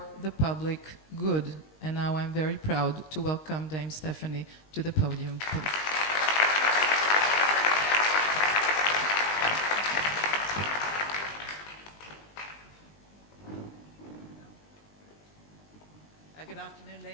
the public good. And now I'm very proud to welcome Dame Stephanie to the podium. Good afternoon,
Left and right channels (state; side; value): late; right; 19 ms